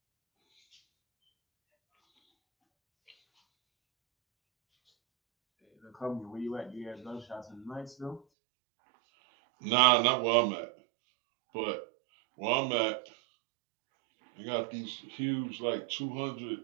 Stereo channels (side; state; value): left; drops out; at 8.2 s